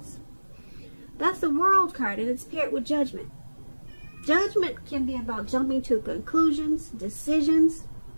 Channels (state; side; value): inverted; both; correlation -1.00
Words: That's the World card, and it's paired with Judgment. Judgment can be about jumping to conclusions, decisions,